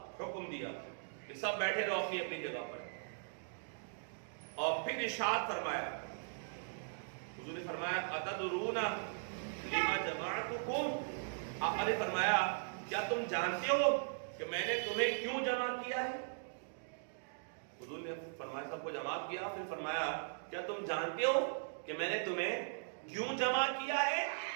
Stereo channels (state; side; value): silent; left; digital silence